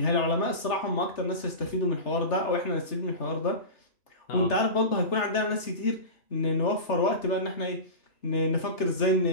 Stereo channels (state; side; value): late; right; 3.3 ms